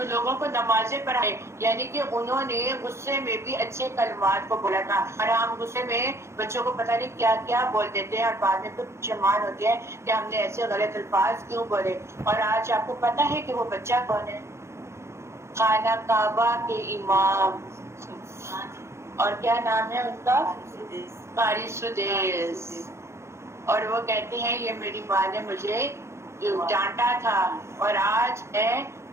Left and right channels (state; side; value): late; left; 0.13 ms